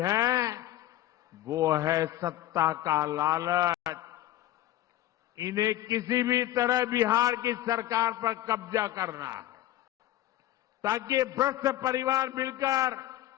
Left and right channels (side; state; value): right; quieter; 14.1 dB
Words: वो है सत्ता का लालच। इन्हें किसी भी तरह बिहार की सरकार पर कब्जा करना है, ताकि भ्रष्ट परिवार मिलकर